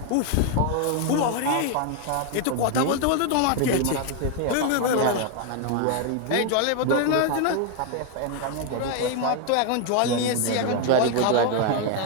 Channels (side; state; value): both; different; correlation 0.00